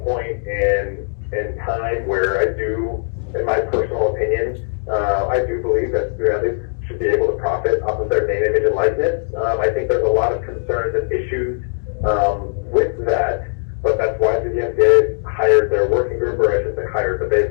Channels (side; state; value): right; silent; digital silence